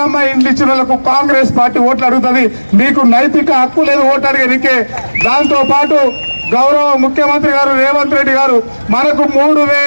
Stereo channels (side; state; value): both; inverted; correlation -1.00